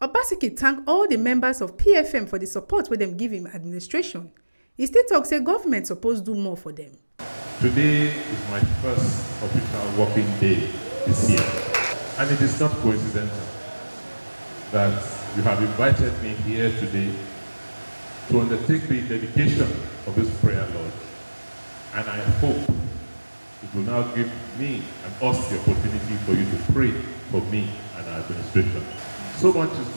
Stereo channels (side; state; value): both; inverted; correlation -1.00